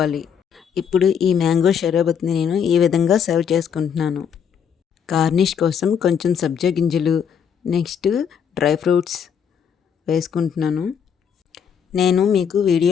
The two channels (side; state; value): right; quieter; 7.6 dB